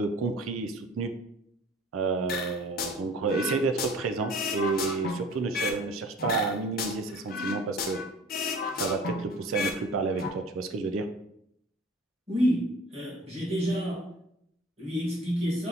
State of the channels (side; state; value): both; normal; correlation 0.46